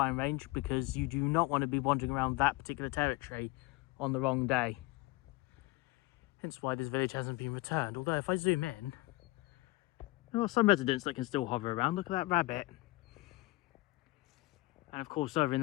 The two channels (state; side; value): quieter; right; 20.8 dB